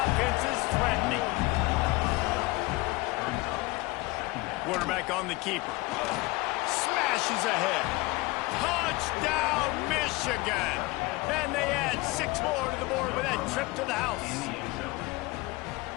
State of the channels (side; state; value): right; quieter; 22.3 dB